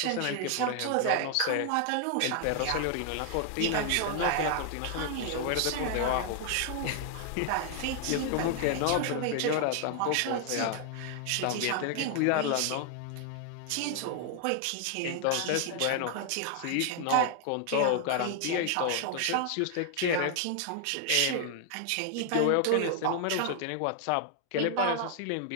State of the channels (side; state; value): both; different; correlation 0.00